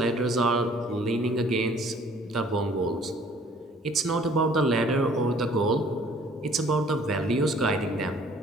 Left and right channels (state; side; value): normal; both; correlation 0.56